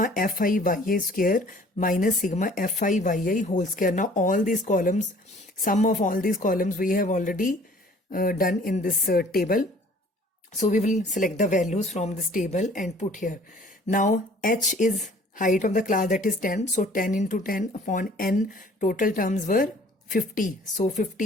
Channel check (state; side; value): normal; both; correlation 0.53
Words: Fi yi square minus sigma Fi yi whole square. Now all these columns, sum of all these columns we have already done in this table. So we will select the values from this table and put here. Now h is height of the class, that is 10. So 10 into 10 upon n, total terms were 50. So